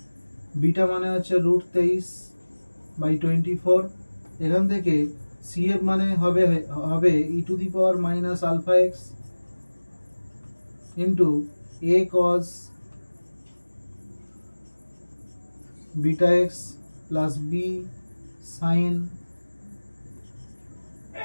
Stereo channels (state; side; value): inverted; both; correlation -1.00